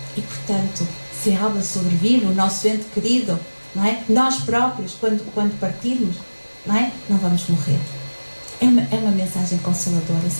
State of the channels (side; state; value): both; inverted; correlation -1.00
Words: E, portanto, se a alma sobrevive, o nosso ente querido, não é? Nós próprios, quando partirmos, não é? Não vamos morrer. É uma mensagem consoladora,